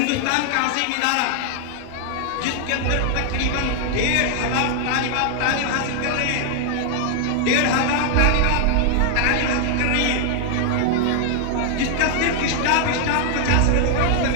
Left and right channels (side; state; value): both; different; correlation 0.00